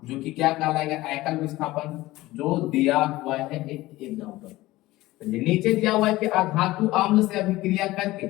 जो कि क्या कहलाएगा, एकल विस्थापन, जो दिया हुआ है एक एग्जांपल। नीचे दिया हुआ है कि अधातु अम्ल से अभिक्रिया करके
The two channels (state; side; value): quieter; right; 18.0 dB